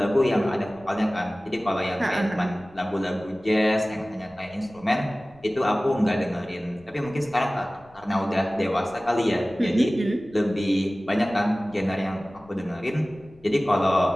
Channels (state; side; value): noise; left; rumble, 28 dB below the sound